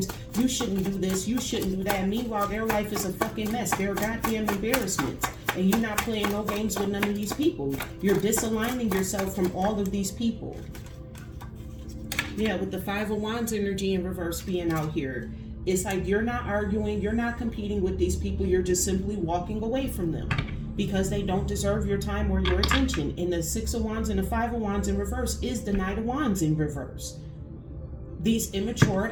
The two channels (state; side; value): identical; both; correlation 1.00